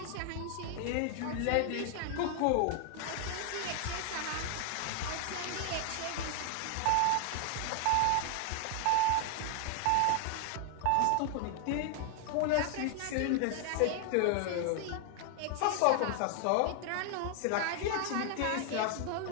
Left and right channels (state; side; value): different; both; correlation 0.00